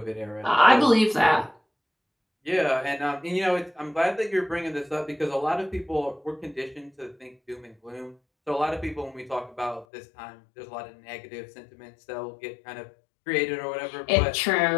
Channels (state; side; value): drops out; right; at 9.9 s